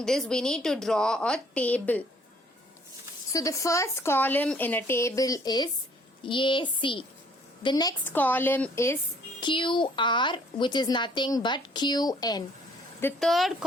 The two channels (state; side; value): normal; both; correlation 0.60